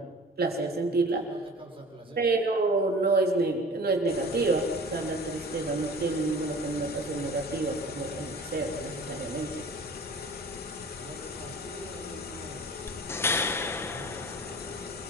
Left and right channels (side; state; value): both; normal; correlation 0.42